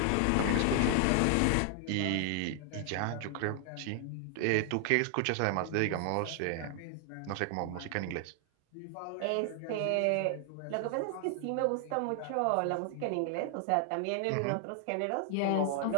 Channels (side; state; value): both; different; correlation 0.00